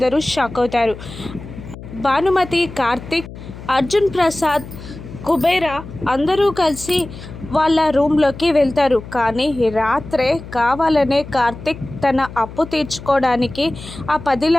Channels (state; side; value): noise; left; hum, 14 dB below the sound